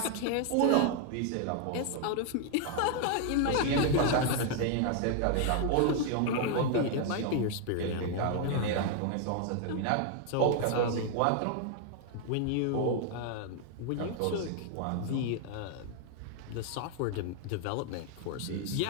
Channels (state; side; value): different; both; correlation 0.00